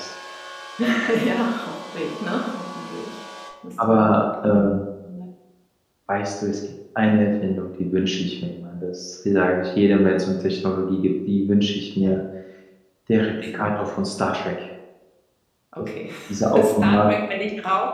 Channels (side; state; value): both; identical; correlation 1.00